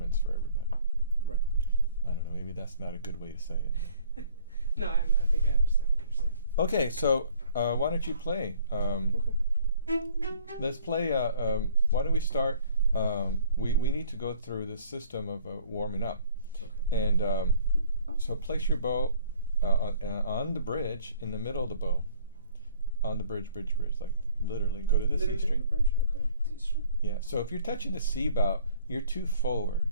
for everybody. Right. I don't know. Maybe that's not a good way to say it. No, I think I understand what you're saying. Okay, so why don't you play? Okay. Let's play. Why don't we start? We need to go through this system of warming up, Okay. and so place your bow on the bridge in the middle of the bow, on the bridge, like literally. Go to the C string. Bridge? Okay. C string. Yeah. So if you're touching the C bow, you're too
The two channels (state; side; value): inverted; both; correlation -0.55